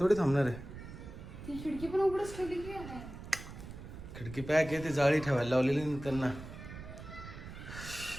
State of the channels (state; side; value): noise; right; rumble, 12 dB below the sound